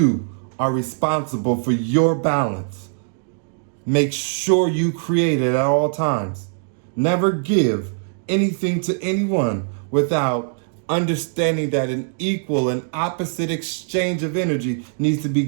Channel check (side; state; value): left; silent; digital silence